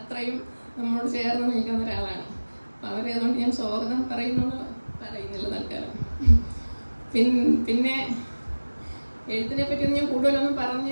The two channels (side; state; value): both; inverted; correlation -1.00